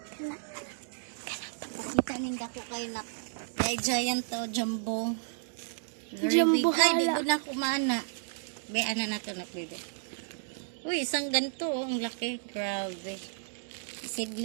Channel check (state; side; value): silent; left; digital silence